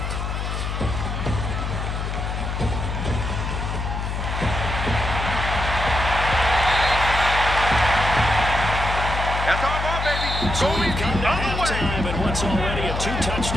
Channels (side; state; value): left; noise; hum, 3 dB below the sound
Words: So we've come to halftime in what's already a